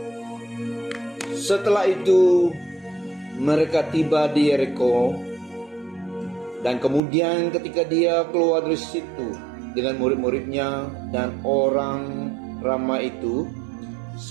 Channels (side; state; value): left; drops out; at 7.0 s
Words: Setelah itu mereka tiba di Yeriko, dan kemudian ketika dia keluar dari situ dengan murid-muridnya dan orang ramai itu,